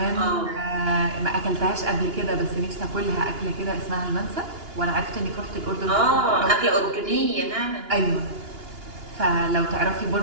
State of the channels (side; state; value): left; late; 2.9 ms